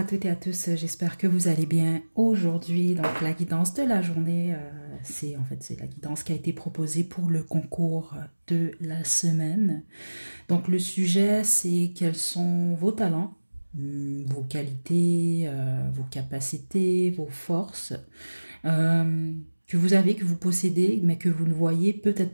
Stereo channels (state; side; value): inverted; both; correlation -1.00